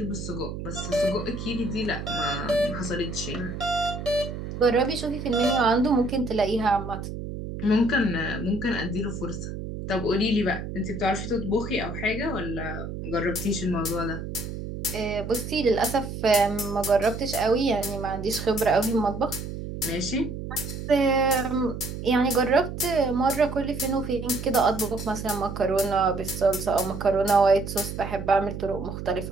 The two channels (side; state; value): right; noise; hum, 7 dB below the sound